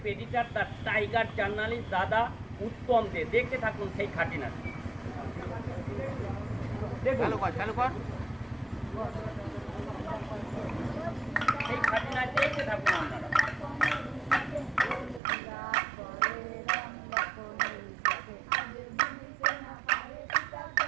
editor the tiger journalist দাদা উত্তম দে। দেখতে থাকুন সেই খাটি নাচ। সেই খাটি নাচ দেখতে থাকুন আপনারা।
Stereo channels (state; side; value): drops out; left; at 15.2 s